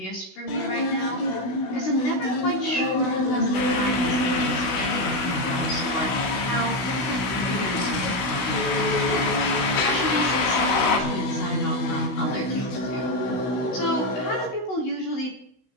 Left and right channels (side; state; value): right; late; 16 ms